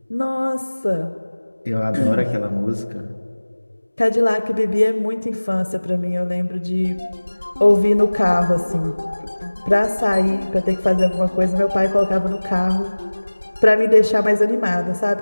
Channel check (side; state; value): both; inverted; correlation -1.00